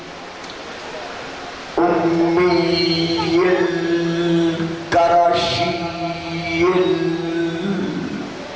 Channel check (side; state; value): both; identical; correlation 1.00